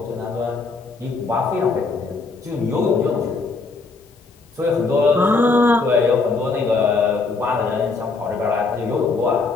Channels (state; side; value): quieter; right; 4.0 dB